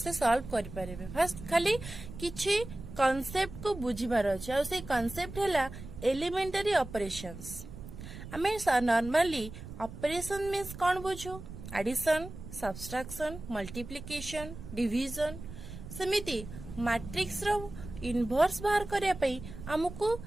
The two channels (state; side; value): noise; right; rumble, 12 dB below the sound